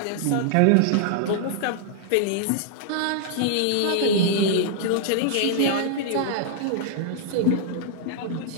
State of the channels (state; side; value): different; both; correlation -0.01